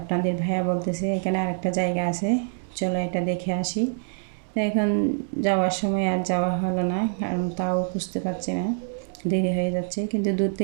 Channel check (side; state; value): left; silent; digital silence